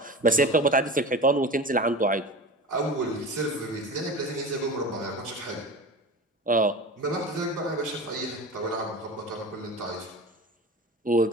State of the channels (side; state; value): both; normal; correlation 0.32